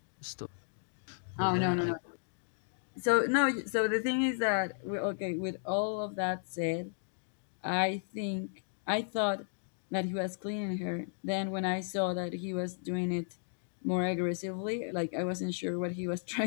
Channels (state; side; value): silent; right; digital silence